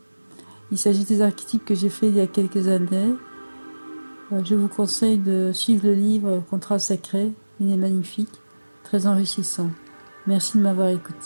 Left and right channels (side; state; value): both; inverted; correlation -1.00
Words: Il s'agit des archétypes que j'ai fait il y a quelques années. Je vous conseille de suivre le livre Contrat sacré, il est magnifique, très enrichissant. Merci de m'avoir